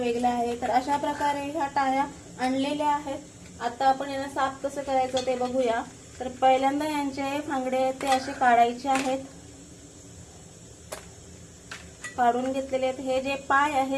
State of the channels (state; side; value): identical; both; correlation 1.00